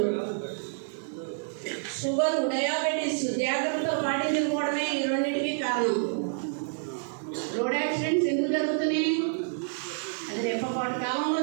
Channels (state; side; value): silent; left; digital silence